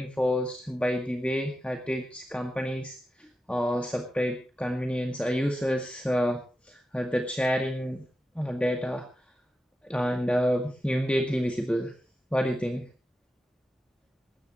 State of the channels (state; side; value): normal; both; correlation 0.90